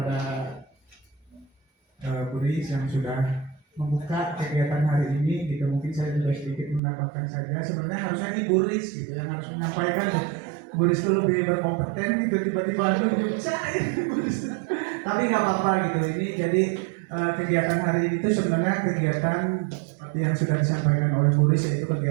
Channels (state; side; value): drops out; left; at 6.8 s